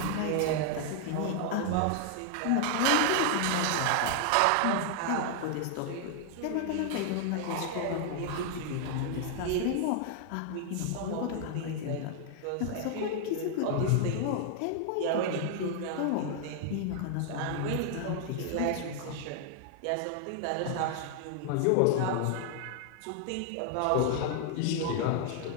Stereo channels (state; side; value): different; both; correlation 0.00